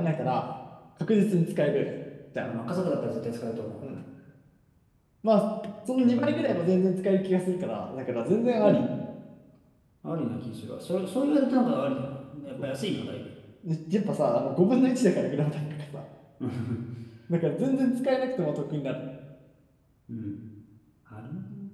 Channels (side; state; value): both; identical; correlation 1.00